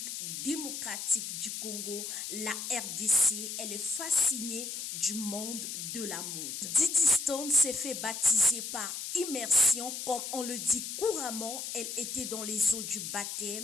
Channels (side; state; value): left; noise; hiss, 6 dB below the sound